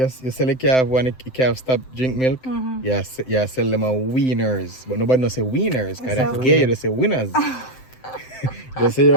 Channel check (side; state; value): right; late; 7.8 ms